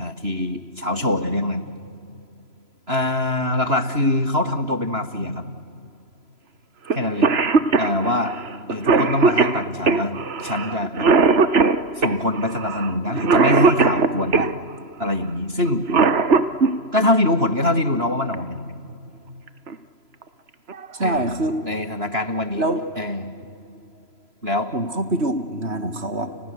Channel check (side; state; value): left; late; 3.0 ms